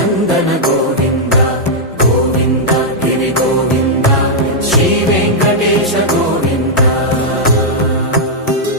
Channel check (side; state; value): both; normal; correlation -0.06